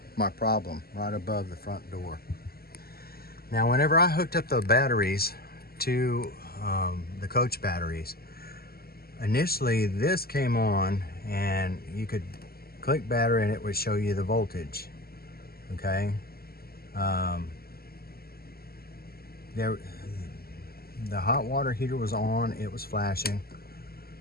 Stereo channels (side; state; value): right; late; 0.45 ms